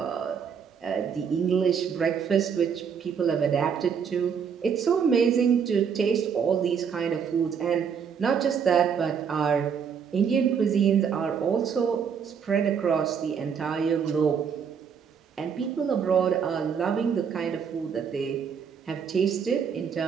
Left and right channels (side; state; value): left; quieter; 7.0 dB